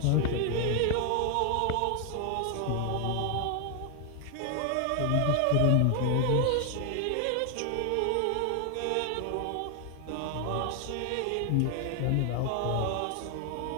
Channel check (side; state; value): both; different; correlation 0.00